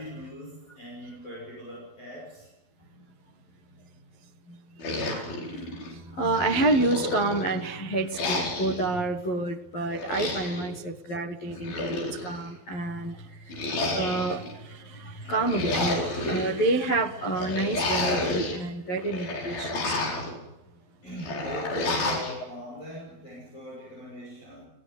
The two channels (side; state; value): right; late; 12 ms